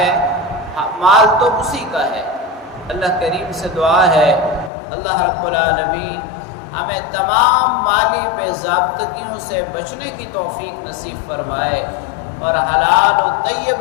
مال تو اسی کا ہے۔ اللہ کریم سے دعا ہے اللہ رب العالمین ہمیں تمام مالی بے ضابطگیوں سے بچنے کی توفیق نصیب فرمائے اور حلال و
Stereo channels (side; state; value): right; drops out; at 4.7 s